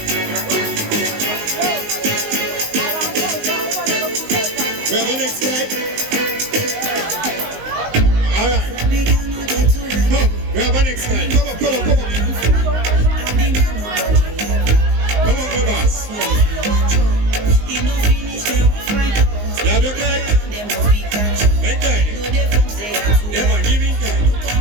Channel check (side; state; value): left; late; 19 ms